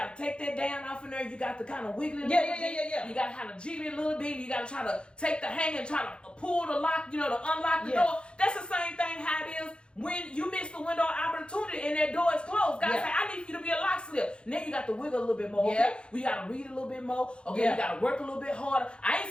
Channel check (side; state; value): right; late; 0.055 ms